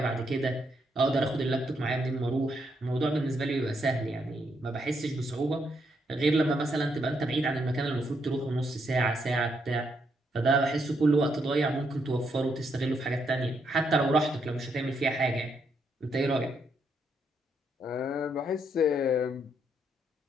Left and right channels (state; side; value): normal; both; correlation 0.77